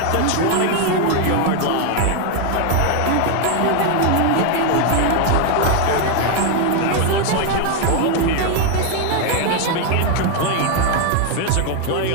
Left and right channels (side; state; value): both; different; correlation 0.01